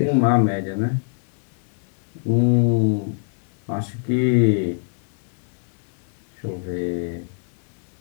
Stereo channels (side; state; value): right; silent; digital silence